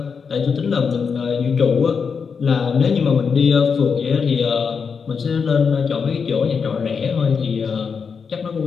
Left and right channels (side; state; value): right; quieter; 5.9 dB